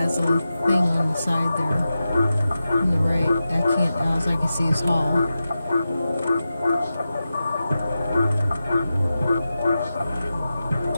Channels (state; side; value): inverted; both; correlation -0.92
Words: a thing on the side there. On the right, I can't. All I can see is hall.